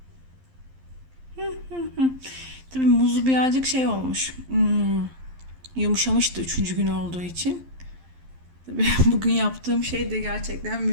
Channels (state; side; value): late; left; 11 ms